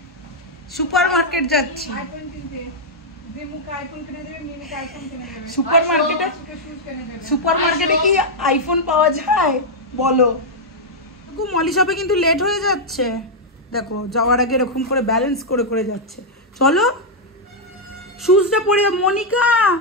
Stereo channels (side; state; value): both; normal; correlation -0.03